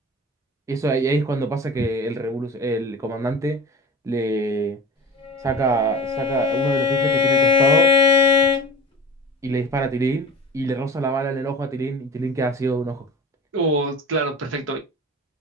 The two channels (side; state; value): both; normal; correlation 0.35